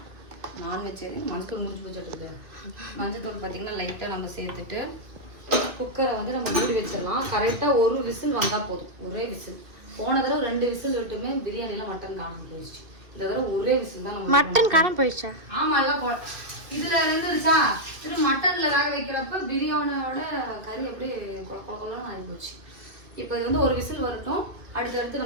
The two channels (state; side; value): late; left; 2.4 ms